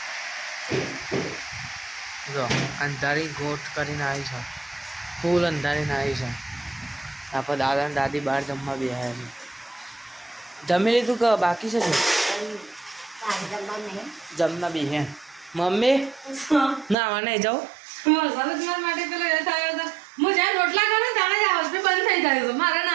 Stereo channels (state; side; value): drops out; left; at 16.9 s